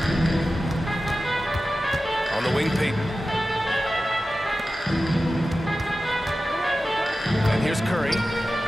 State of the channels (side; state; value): both; normal; correlation 0.94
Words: On the wing, Payton. And here's Curry.